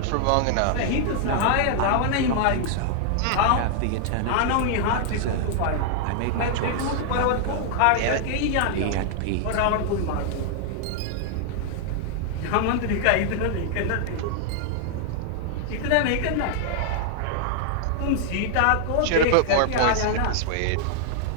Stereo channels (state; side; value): different; both; correlation -0.01